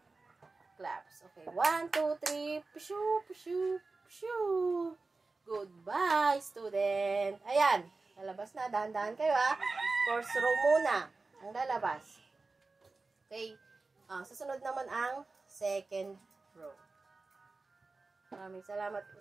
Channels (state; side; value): quieter; left; 3.7 dB